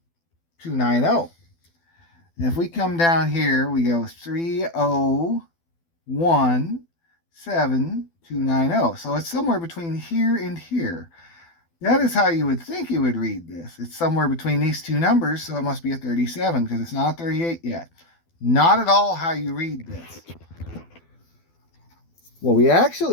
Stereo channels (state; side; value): late; right; 12 ms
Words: And if we come down here, we go 3017290. So it's somewhere between here and here. That is how you would think you would read this. It's somewhere between these two numbers, so it must be a 37 because it's not a 38 yet. Not at all how you read this. What we